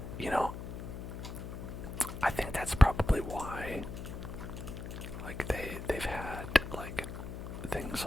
you know, I think that's probably why, like, they've had, like, things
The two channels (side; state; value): left; noise; hum, 7 dB below the sound